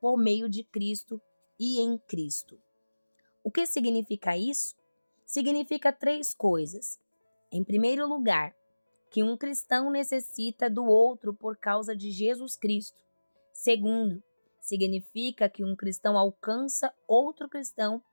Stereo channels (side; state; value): both; inverted; correlation -1.00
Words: meio de Cristo e em Cristo. O que significa isso? Significa 3 coisas. Em primeiro lugar, que um cristão necessita do outro por causa de Jesus Cristo. Segundo, significa que um cristão alcança outro cristão